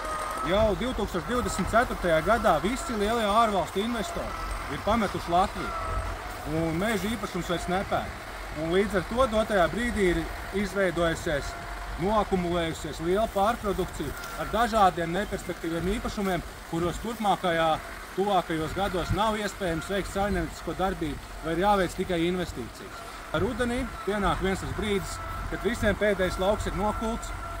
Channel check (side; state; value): both; identical; correlation 1.00